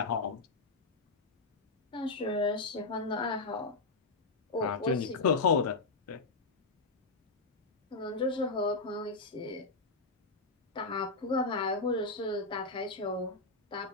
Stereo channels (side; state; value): right; quieter; 3.6 dB